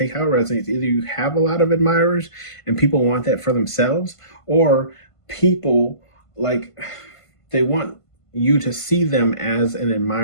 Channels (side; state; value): right; late; 1.5 ms